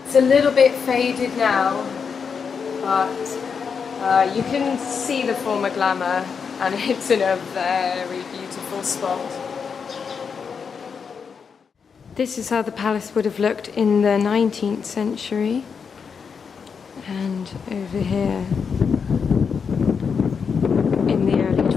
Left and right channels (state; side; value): quieter; right; 6.1 dB